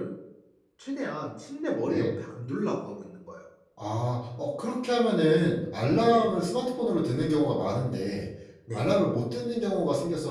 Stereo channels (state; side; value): identical; both; correlation 1.00